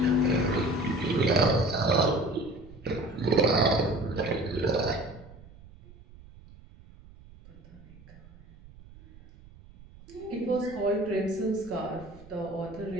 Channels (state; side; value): noise; right; rumble, 21 dB below the sound